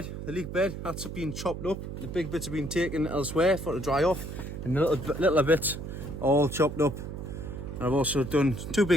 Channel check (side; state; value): right; noise; hum, 8 dB below the sound